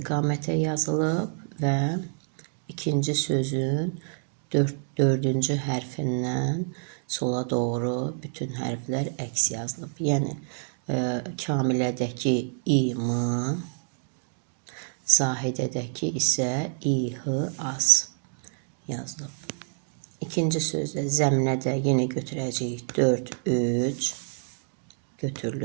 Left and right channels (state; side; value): silent; left; digital silence